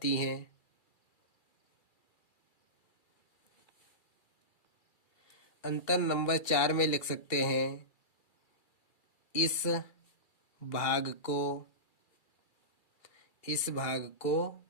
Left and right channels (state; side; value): late; right; 2.3 ms